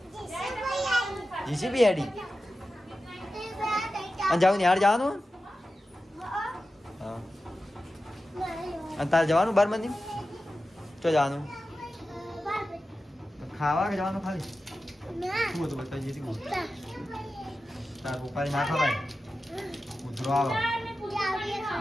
જીસીબી આડી અને જાવ ને યાર જવાનું હા અને તારે જવાનું બાર મંદી તો જવાનું ખાવા કે જવાનું ખાલી શું હતું બતાવી જતી તાર ઉપાડી ના ખવાય ઉધરો આવે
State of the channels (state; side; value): normal; both; correlation 0.93